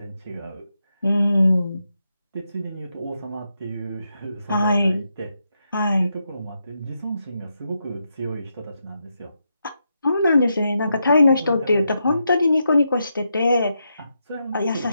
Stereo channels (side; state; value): both; inverted; correlation -0.84